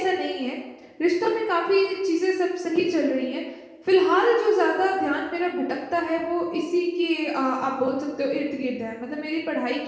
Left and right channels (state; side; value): identical; both; correlation 1.00